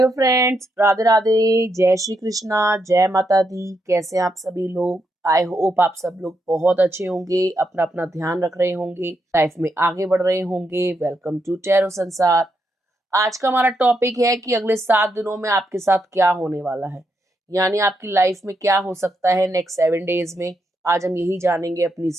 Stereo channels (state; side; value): normal; both; correlation 0.81